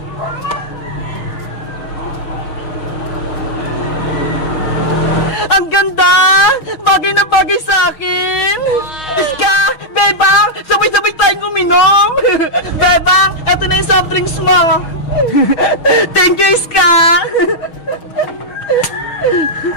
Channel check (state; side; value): late; right; 6.2 ms